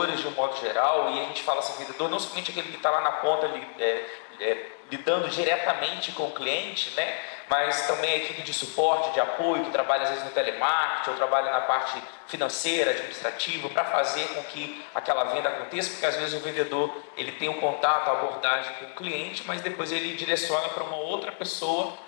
de um modo geral, e a gente fala assim, vendedor não somente aquele que está lá na ponta lidando diretamente com o cliente, né? Mas também a equipe de suporte, de apoio, que trabalha às vezes no telemarketing, ou trabalha na parte financeira, administrativa, para fazer com que aquela venda aconteça, porque às vezes o vendedor ele tem um contato, a abordagem com o cliente, mas depois ele direciona para uma outra pessoa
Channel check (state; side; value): silent; right; digital silence